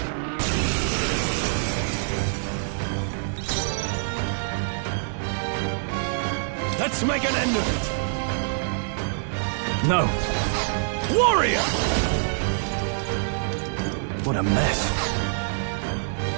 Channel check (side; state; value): left; silent; digital silence